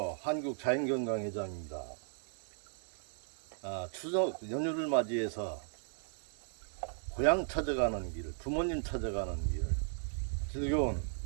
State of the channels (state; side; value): silent; left; digital silence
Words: 한국자연건강회장입니다. 추석 연휴를 맞이해서 고향 찾아가는 길, 부모님 찾아가는 길, 즐거운